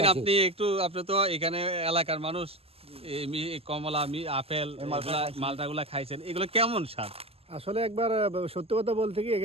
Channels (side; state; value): left; late; 0.29 ms